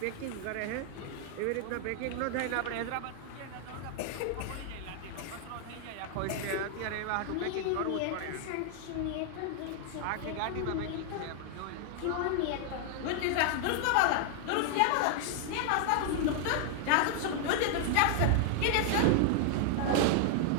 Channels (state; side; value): different; both; correlation 0.00